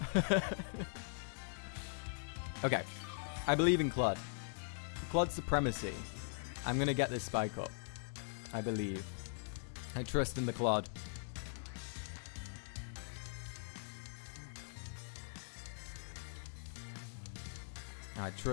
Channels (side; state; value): right; silent; digital silence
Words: Okay. I believe in Claude. Claude supremacy. I'm going to get this Spike up. I believe. I trust in the Claude. I